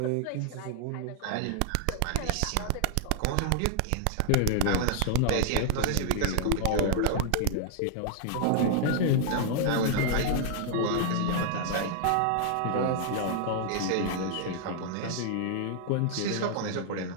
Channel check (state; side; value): different; both; correlation -0.01